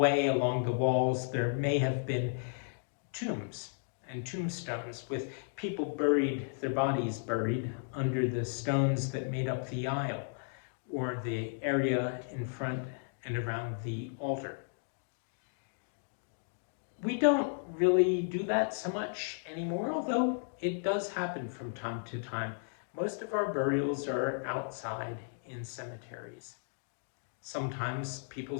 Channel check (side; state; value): right; silent; digital silence